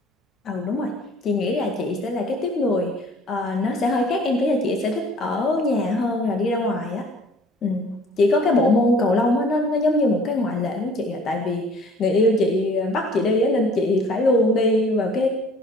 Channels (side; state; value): both; normal; correlation 0.52